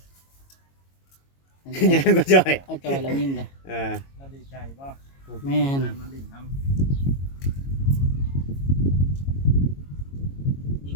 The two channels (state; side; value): late; right; 22 ms